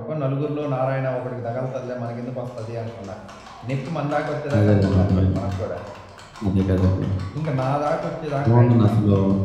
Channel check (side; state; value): both; identical; correlation 1.00